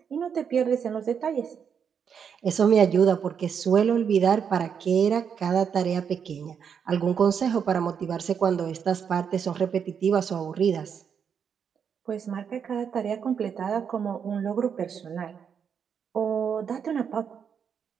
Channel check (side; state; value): left; quieter; 7.3 dB